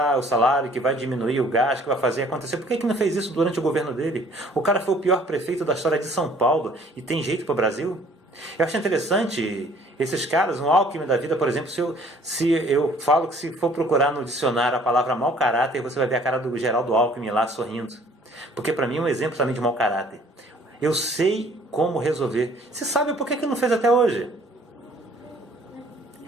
o salário, que vai diminuir o gasto, que vai fazer acontecer. Por que não fez isso durante o governo dele? O cara foi o pior prefeito da história de São Paulo e tem jeito para o Brasil? Eu acho interessante esses caras, um Alckmin da vida, por exemplo, se eu falo que se for procurar no dicionário a palavra mau caráter, você vai ver a cara do Geraldo Alckmin lá sorrindo. Porque para mim é um exemplo também de mau caráter. Eu sei como resolver. Você sabe por que não fez até hoje?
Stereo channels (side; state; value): both; normal; correlation 0.56